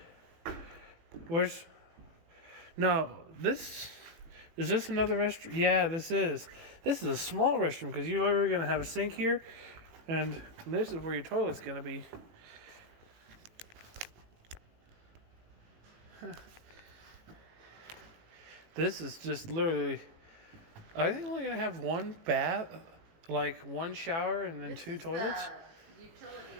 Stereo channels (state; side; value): late; left; 18 ms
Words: room. Where's... No, this... Is this another restroom? Yeah, this is. This is a small restroom because you're literally going to have a sink here. And this is where your toilet's going to be. Huh. This is just literally... Are they only going to have 1 bath? Like 1 shower and then This 2 is toilets? the utility